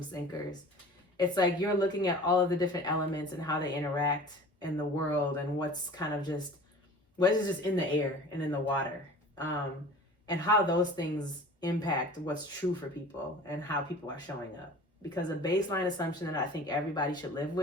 thinkers. It's like, you're looking at all of the different elements and how they interact in the world, and what is just in the air and in the water, and how those things impact what's true for people and how people are showing up. Because a baseline assumption that I think everybody should live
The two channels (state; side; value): normal; both; correlation 0.42